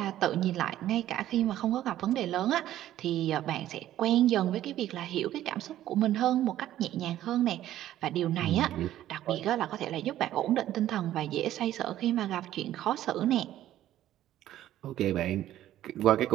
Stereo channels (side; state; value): left; quieter; 13.0 dB